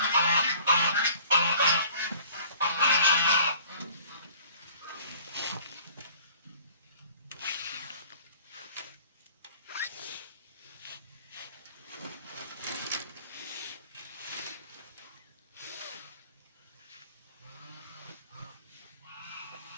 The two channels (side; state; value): both; inverted; correlation -0.51